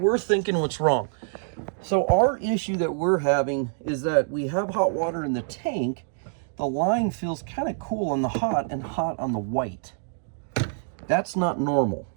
thinking what's wrong. So our issue that we're having is that we have hot water in the tank. The line feels kind of cool on the hot and hot on the white. That's not normal.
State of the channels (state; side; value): silent; left; digital silence